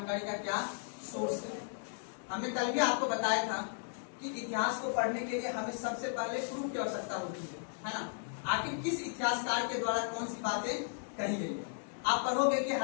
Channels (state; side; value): silent; right; 54 dB below the other